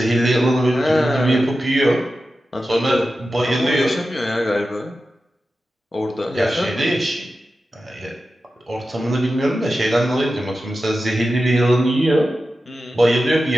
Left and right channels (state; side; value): normal; both; correlation 0.92